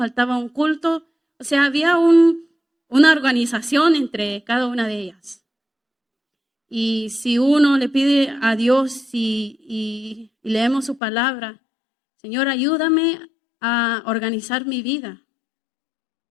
un culto. O sea, había una organización entre cada una de ellas. Y si uno le pide a Dios y leemos su palabra, Señor, ayúdame a organizar mi vida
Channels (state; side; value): drops out; right; at 11.0 s